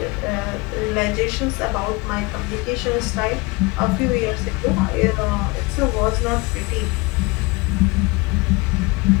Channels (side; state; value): right; quieter; 25.0 dB